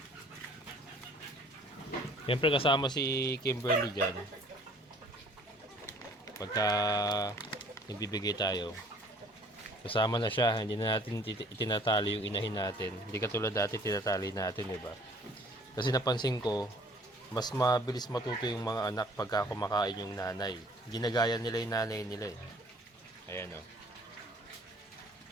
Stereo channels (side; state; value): both; normal; correlation 0.55